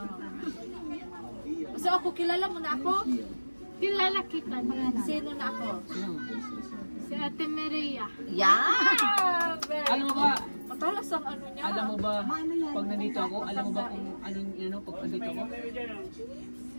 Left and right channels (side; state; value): both; inverted; correlation -1.00